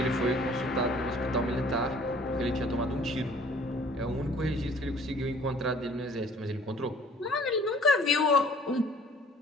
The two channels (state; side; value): normal; both; correlation 0.54